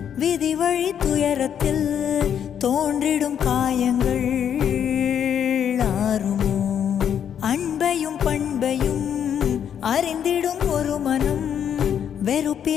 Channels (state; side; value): quieter; right; 8.8 dB